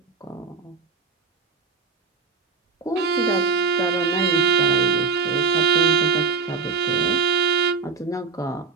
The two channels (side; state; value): left; quieter; 4.7 dB